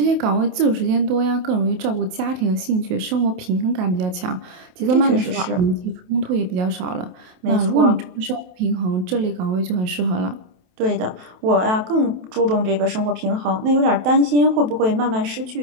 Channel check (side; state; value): left; late; 28 ms